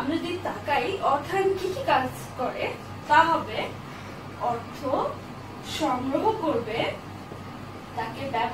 যদি তাকাই অর্থায়ন কি কি কাজ করে, তা হবে অর্থ সংগ্রহ করবে, তাকে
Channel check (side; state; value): both; identical; correlation 1.00